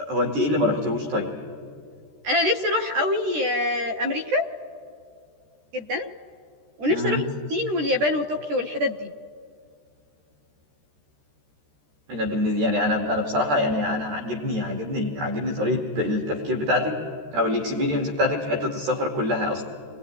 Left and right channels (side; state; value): left; late; 13 ms